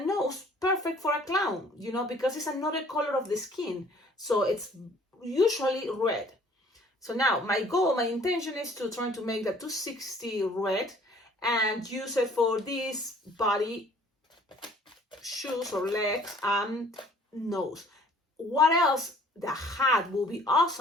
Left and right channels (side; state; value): both; normal; correlation 0.55